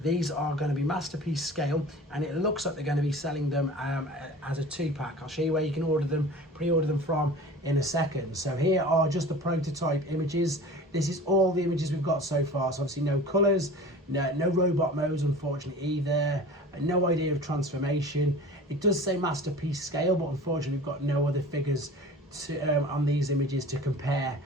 These are going to be Masterpiece Scale, and it looks like they're going to be selling them as a 2-pack. I'll show you where you can order them, pre-order them from in a second. So here are just the prototype images. This is all the images we've got so far. So obviously no colours, no robot modes unfortunately either, no idea of transformation. It does say Masterpiece Scale, but unfortunately we've got no other figures to on these images to compare.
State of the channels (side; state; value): both; normal; correlation 0.39